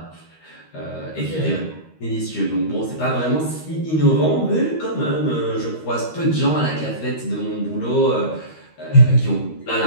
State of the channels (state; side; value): late; right; 13 ms